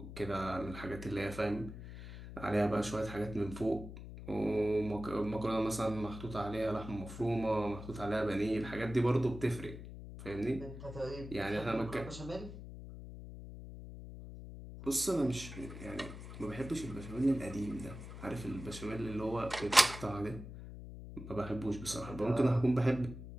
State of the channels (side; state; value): left; noise; hum, 11 dB below the sound